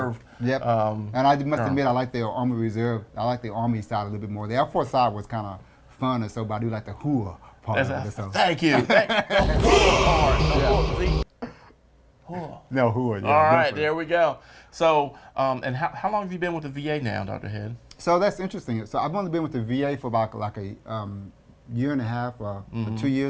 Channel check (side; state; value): both; identical; correlation 1.00